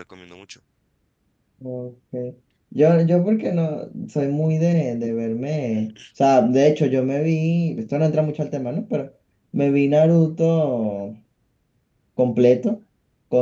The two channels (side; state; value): both; identical; correlation 1.00